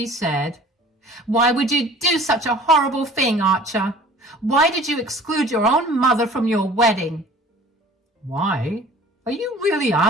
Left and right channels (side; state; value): both; normal; correlation 0.47